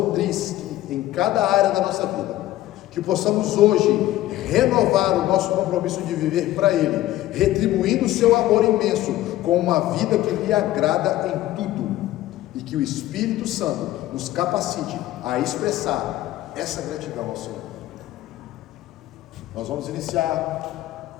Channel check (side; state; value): right; quieter; 15.0 dB